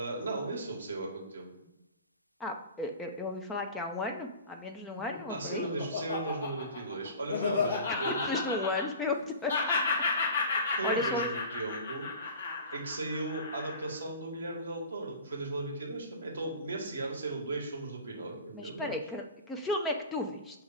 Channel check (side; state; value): both; inverted; correlation -0.38